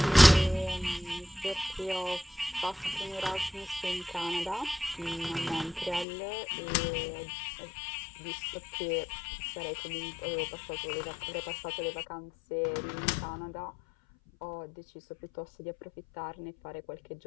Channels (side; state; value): right; drops out; at 6.1 s